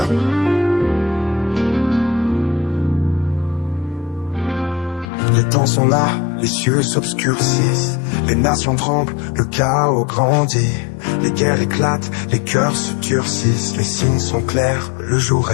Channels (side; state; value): right; drops out; at 5.1 s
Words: Les temps sont là, les cieux s'obscurcissent, les nations tremblent, le chaos grandit, les guerres éclatent, les cœurs se durcissent, les signes sont clairs, le jour